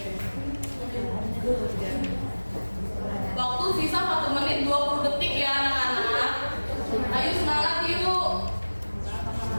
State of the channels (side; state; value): both; inverted; correlation -1.00